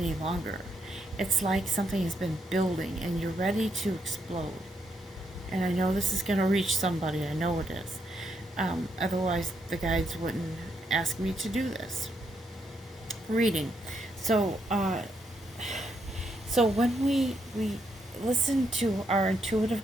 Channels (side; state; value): both; normal; correlation 0.78